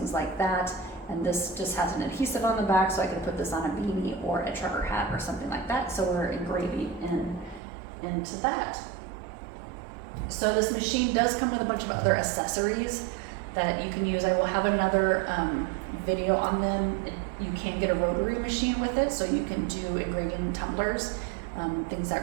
like that. And this just has an adhesive on the back, so I can put this on a beanie or a trucker hat or something like that. So we're engraving into that. So this machine does come with a bunch of other accessories that you can use. I will have another video on them. You can get a rotary machine with it, so you can do engraving tumblers, things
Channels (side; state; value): left; drops out; at 7.6 s